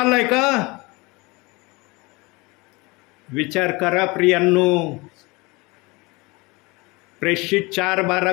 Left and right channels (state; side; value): quieter; right; 25.0 dB